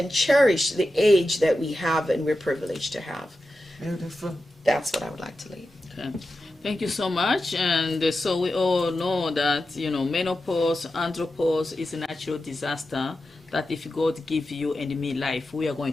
cherish the age that we have and we're privileged to have. Beautiful. That's what I would like to leave. Okay. Thank you so much. And so we all know that, you know, menopause, andropause is a natural disaster that if God give you and me life, we are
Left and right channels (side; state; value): both; normal; correlation 0.91